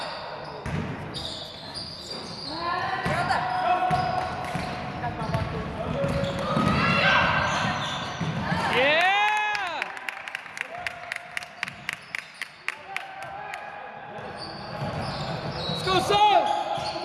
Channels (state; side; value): identical; both; correlation 1.00